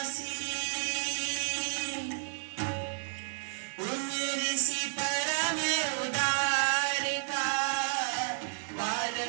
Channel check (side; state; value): left; silent; digital silence